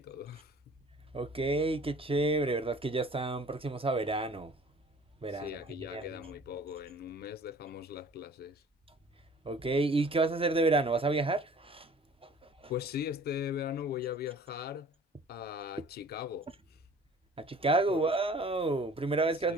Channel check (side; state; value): both; normal; correlation 0.49